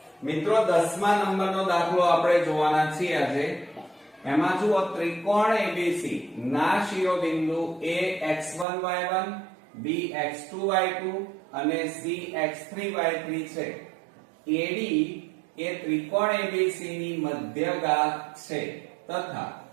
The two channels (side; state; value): left; drops out; at 8.7 s